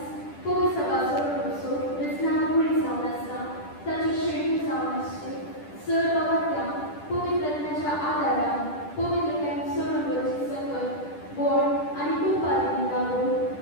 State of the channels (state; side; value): late; right; 10 ms